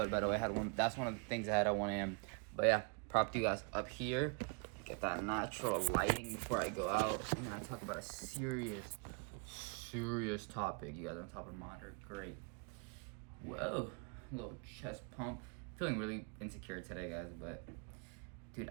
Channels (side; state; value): left; quieter; 35.4 dB